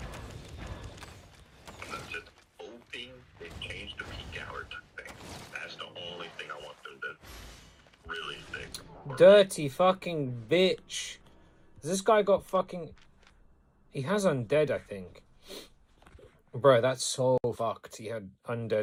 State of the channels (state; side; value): identical; both; correlation 1.00